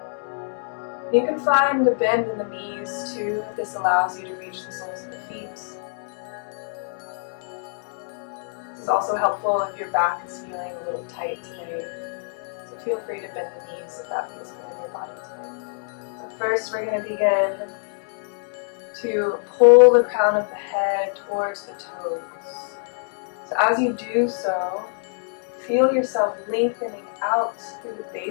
You can find a bend in the knees too, if this allows you to reach the soles of the feet. This is also helpful if your back is feeling a little tight today. So feel free to bend the knees if that feels good in your body today. So first we're going to begin to pull the crown of the head towards the toes. So as you do so, feel yourself lengthening out through the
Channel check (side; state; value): right; silent; digital silence